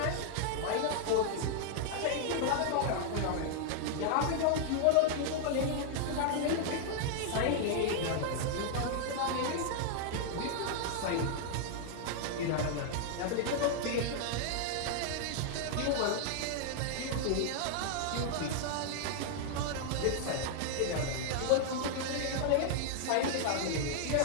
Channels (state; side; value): different; both; correlation -0.01